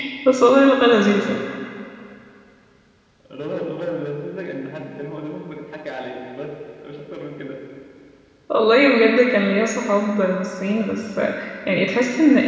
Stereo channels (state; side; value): identical; both; correlation 1.00